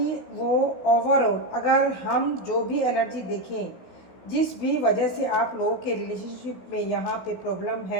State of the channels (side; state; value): right; late; 16 ms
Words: वो ओवरऑल, अगर हम जो भी एनर्जी देखें, जिस भी वजह से आप लोगों के रिलेशनशिप में यहाँ पे प्रॉब्लम